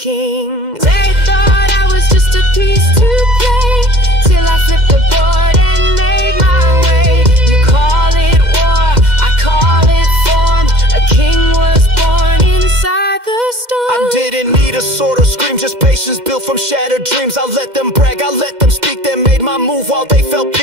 They thought I was just a piece to play, till I flipped the board and made my way. You call it war, I call it form. A king was born inside the storm. I didn't need a sword or scream, just patience built from shattered dreams. I let them brag, I let them speak, they made my move while they felt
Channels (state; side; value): late; left; 2.1 ms